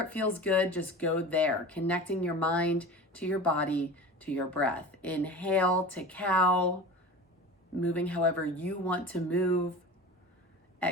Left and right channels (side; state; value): both; normal; correlation 0.34